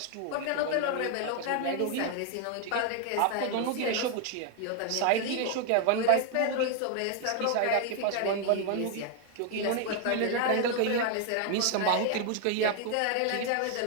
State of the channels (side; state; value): both; different; correlation 0.00